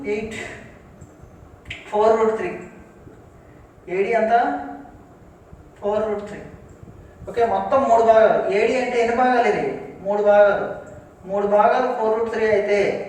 8, 4√3. AD అంతా 4√3. ఓకే, మొత్తం 3 భాగాలు. ఏడి అంటే ఎన్ని భాగాలు? ఇది 3 భాగాలు. 3 భాగాలు 4√3 అయితే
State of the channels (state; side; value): identical; both; correlation 1.00